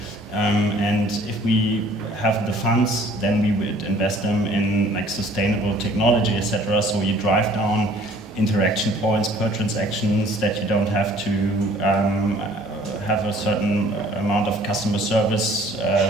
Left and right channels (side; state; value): both; normal; correlation 0.54